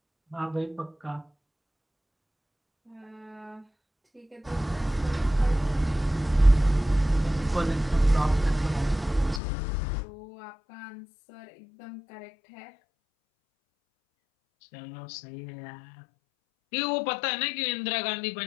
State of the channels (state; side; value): drops out; right; at 9.4 s